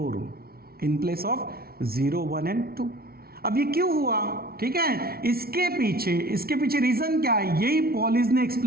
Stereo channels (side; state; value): left; late; 0.44 ms